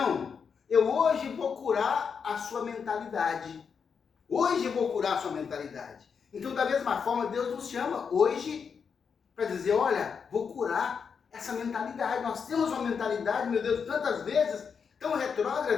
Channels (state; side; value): quieter; right; 6.3 dB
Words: eu hoje vou curar a sua mentalidade. Hoje eu vou curar a sua mentalidade. Então, da mesma forma, Deus nos chama hoje para dizer: olha, vou curar essa mentalidade. Nós temos uma mentalidade, meu Deus, tantas vezes, tão